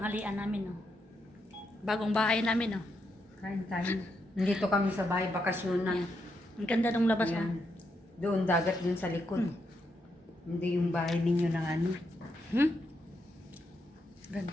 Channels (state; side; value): normal; both; correlation 0.81